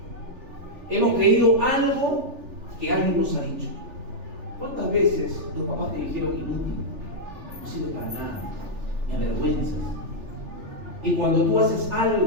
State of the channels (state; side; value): late; left; 3.4 ms